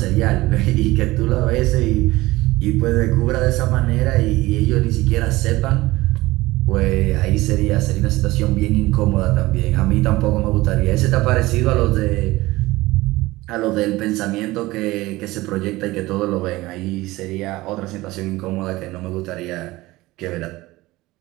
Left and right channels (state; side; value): quieter; left; 19.3 dB